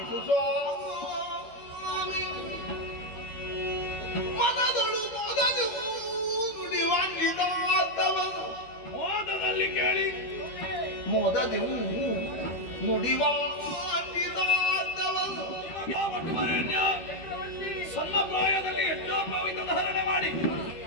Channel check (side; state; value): right; late; 13 ms